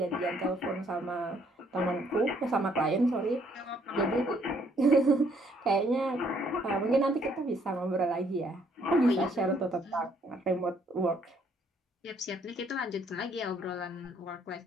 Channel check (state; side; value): normal; both; correlation 0.67